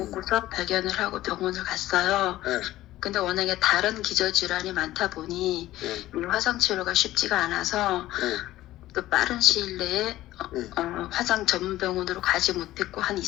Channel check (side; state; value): right; quieter; 15.3 dB